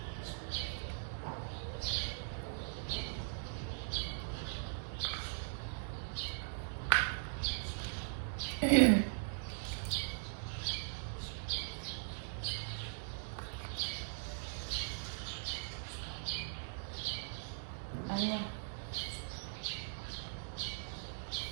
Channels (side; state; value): left; silent; digital silence